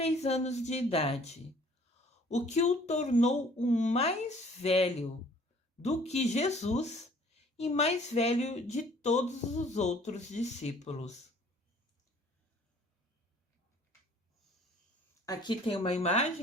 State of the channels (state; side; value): normal; both; correlation 0.55